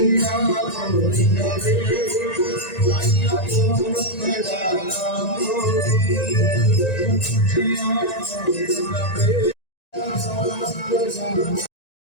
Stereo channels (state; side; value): late; right; 1.9 ms